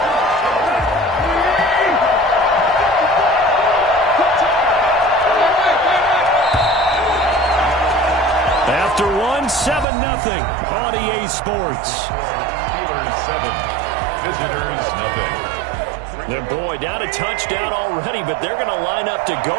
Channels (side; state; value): left; drops out; at 9.9 s